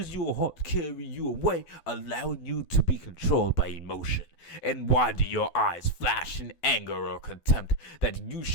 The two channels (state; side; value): late; right; 12 ms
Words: your heart carry you away, allowing you to be controlled by emotion? And why do your eyes flash in anger or contempt, that you